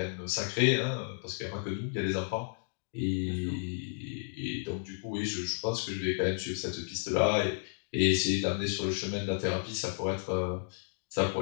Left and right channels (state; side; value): silent; right; digital silence